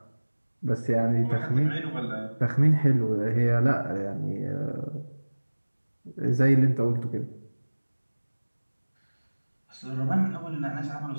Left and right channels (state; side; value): inverted; both; correlation -1.00